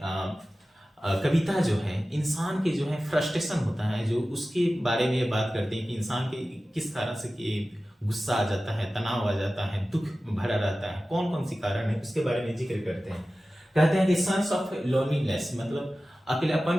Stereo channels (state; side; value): normal; both; correlation 0.95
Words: कविता जो है इंसान के जो है फ्रस्ट्रेशन होता है जो उसके बारे में बात करते हैं कि इंसान के किस तरह से गुस्सा आ जाता है, तनाव आ जाता है, दुख भरा रहता है, कौन कौन सी कारण है उसके बारे में जिक्र करते हैं। कहते हैं कि सेंस ऑफ लोनलीनेस, मतलब अकेलापन